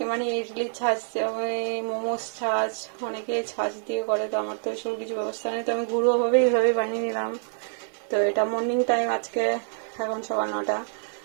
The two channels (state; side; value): silent; left; 59 dB below the other